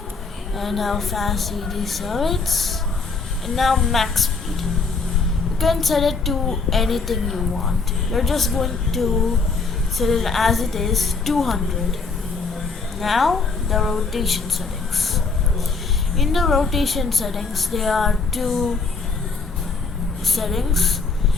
and how fast he decelerates. And now max speed, you can set it to anything you want. You're just going to set it as it is, 200. Now the rotation settings. In the rotation settings, there are two settings:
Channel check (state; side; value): quieter; right; 4.4 dB